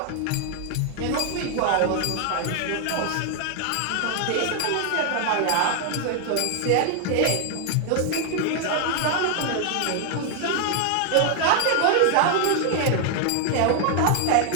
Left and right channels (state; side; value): different; both; correlation 0.00